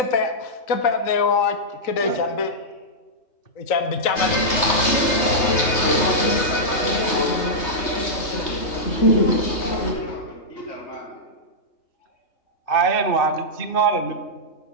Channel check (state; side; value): late; right; 3.3 ms